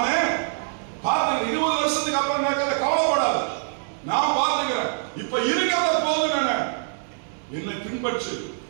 பார்த்துக்கிறேன். 20 வருஷத்துக்கு அப்புறம் நடக்கிறத கவலைப்படாத, நான் பார்த்துக்கிறேன். இப்ப இருக்கிறத போதும். என்னை பின்பற்று,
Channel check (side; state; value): left; silent; digital silence